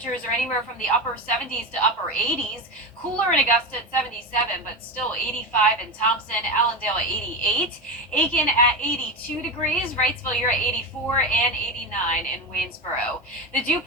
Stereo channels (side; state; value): both; normal; correlation 0.19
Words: are anywhere from the upper 70s to upper 80s. Cooler in Augusta at 77, but still 85 in Thompson, Allendale at 88, Aiken at 82 degrees, Wrightsville, you're at 84, and 89 in Waynesboro. The dew